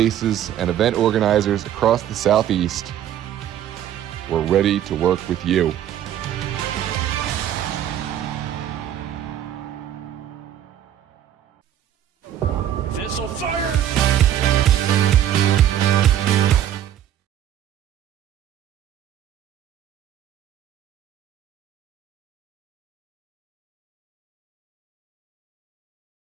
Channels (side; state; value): left; quieter; 10.8 dB